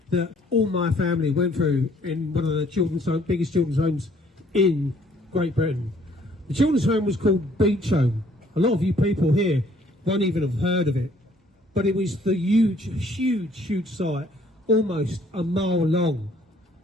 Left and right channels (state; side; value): normal; both; correlation 0.61